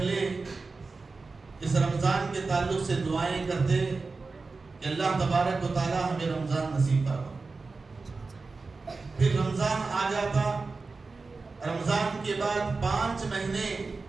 اس رمضان کے تعلق سے دعائیں کرتے کہ اللہ تبارک و تعالی ہمیں رمضان نصیب فرما۔ پھر رمضان آ جاتا، رمضان کے بعد 5 مہینے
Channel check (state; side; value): quieter; left; 4.0 dB